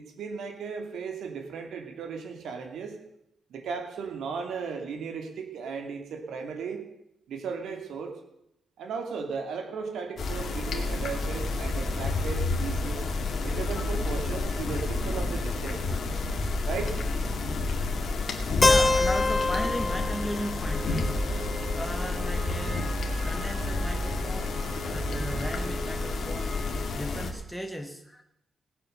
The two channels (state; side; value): normal; both; correlation 0.85